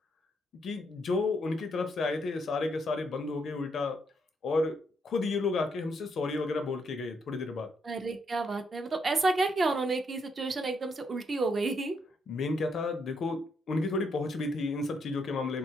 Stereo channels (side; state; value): both; normal; correlation 0.76